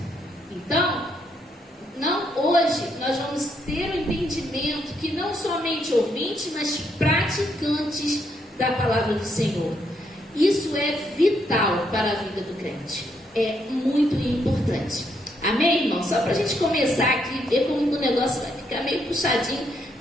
Então, hoje nós vamos ter o entendimento que não somente ouvintes, mas praticantes da palavra do Senhor. Isso é vital para a vida do crente. É muito importante. Amém, irmão? Só para a gente começar aqui, ver como o negócio vai ficar meio puxadinho.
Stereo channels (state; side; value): normal; both; correlation 0.75